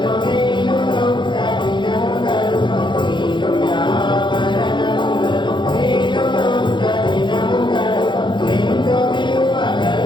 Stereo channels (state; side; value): late; right; 0.23 ms